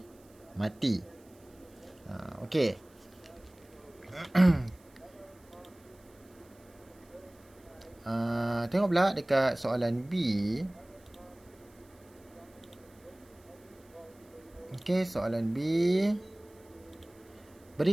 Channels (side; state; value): right; noise; hiss, 29 dB below the sound